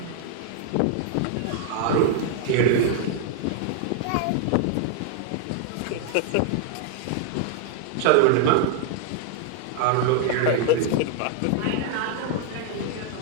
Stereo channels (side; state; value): both; different; correlation 0.00